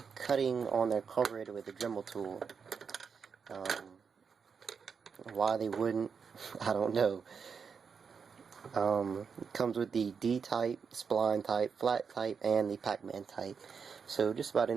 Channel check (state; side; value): quieter; left; 6.0 dB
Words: cutting on their carburetor with a Dremel tool. Why they wouldn't, I don't know. It comes with the D-type, spline type, flat type, and the Pac-Man type. So just about